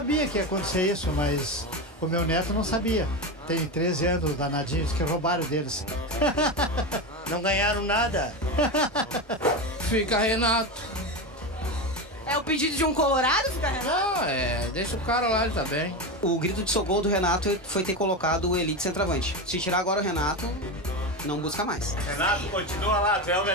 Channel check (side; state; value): both; normal; correlation 0.18